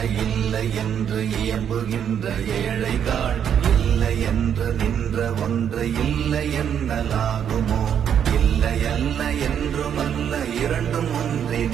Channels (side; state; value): left; quieter; 8.7 dB